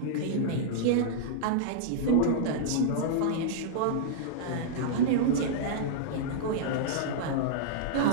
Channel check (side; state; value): both; different; correlation -0.02